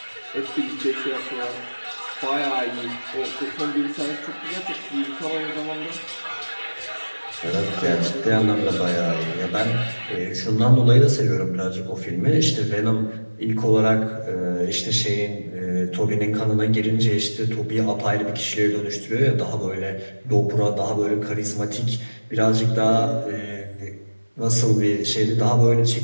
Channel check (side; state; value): both; inverted; correlation -1.00